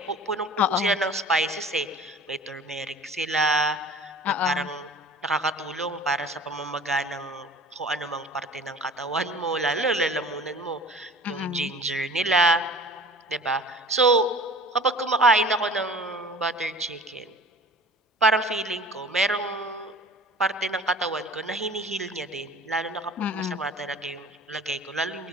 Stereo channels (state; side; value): normal; both; correlation 0.44